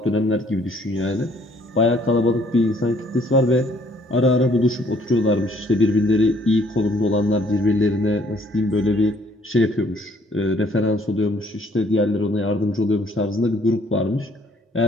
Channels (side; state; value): both; normal; correlation 0.62